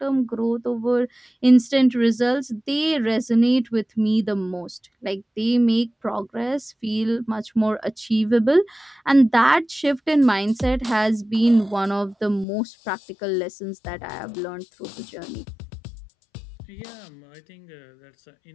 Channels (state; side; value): drops out; right; at 12.5 s